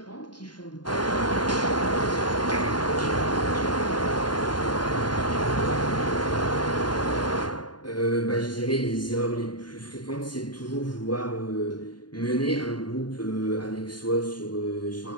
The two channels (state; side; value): late; right; 0.71 ms